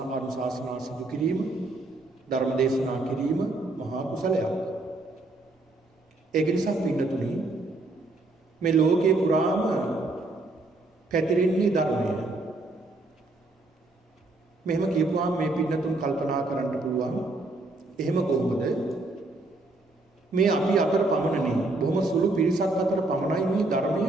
සිදු කිරීම, ධර්ම දේශනා කිරීම මහා කුසලයක්. ඒක නිසා පින්නතුනි, මේ ලෝකේ පුරාම පැතිරෙන්නේ ධර්මය. මෙහෙම කියපුවාම මේ පින්නතුන් කල්පනා කරන්න පුළුවන්, එහෙම කොහොමද මේ අපි අතර පමණනේ, බොහොම සුළු පිරිසක් අතර පමණයි මේ ධර්මය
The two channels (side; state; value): left; quieter; 3.0 dB